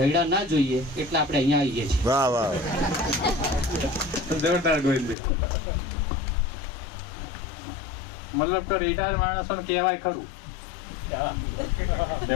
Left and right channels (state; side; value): drops out; right; at 5.2 s